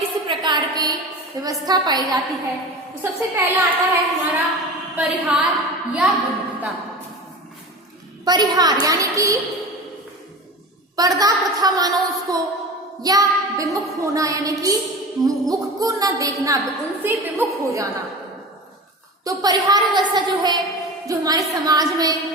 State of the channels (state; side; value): normal; both; correlation 0.32